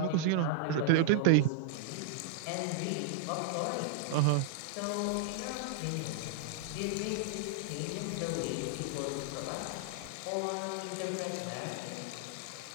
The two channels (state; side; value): different; both; correlation -0.01